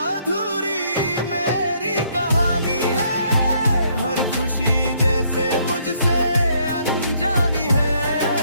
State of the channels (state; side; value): inverted; both; correlation -0.68